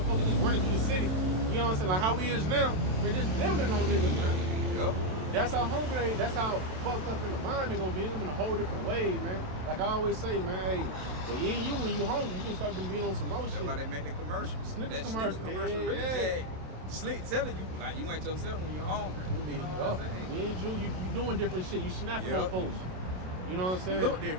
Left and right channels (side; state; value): left; late; 27 ms